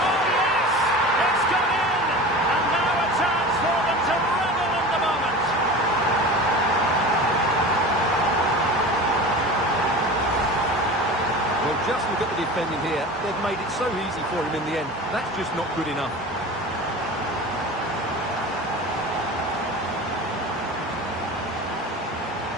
yes! It's gone in! And now a chance for them to revel in the moment. Well, just look at the defending here. They've made it so easy for him in the end. That's just not good enough.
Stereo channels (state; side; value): normal; both; correlation 0.34